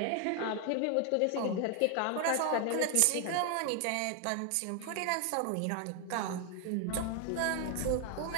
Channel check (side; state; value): both; different; correlation 0.00